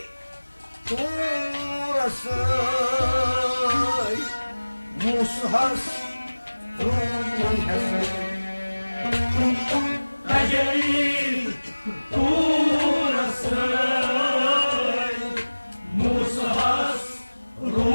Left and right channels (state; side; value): inverted; both; correlation -1.00